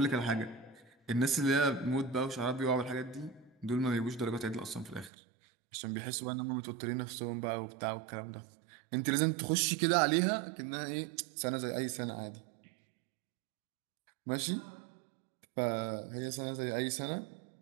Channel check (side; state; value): left; drops out; at 5.1 s